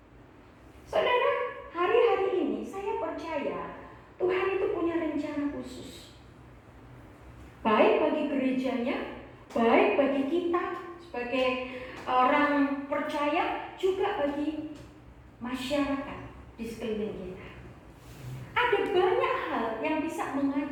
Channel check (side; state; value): both; identical; correlation 1.00